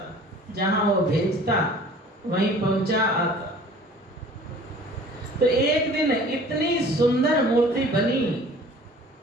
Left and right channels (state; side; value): normal; both; correlation 0.48